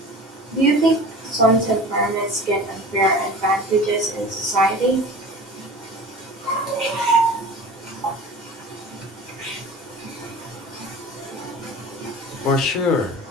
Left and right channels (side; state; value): both; normal; correlation 0.38